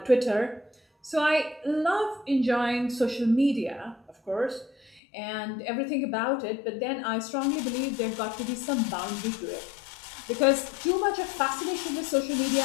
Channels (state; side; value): drops out; right; at 5.0 s